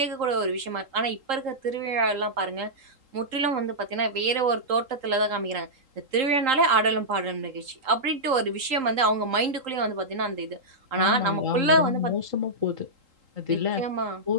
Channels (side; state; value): left; late; 3.8 ms